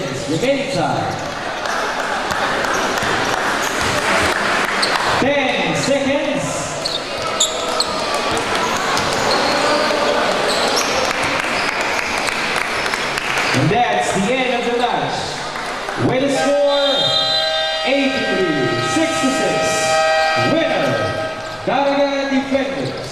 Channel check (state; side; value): identical; both; correlation 1.00